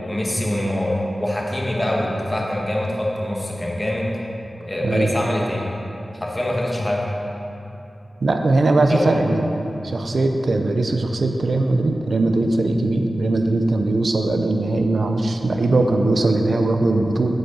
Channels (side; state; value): both; normal; correlation 0.94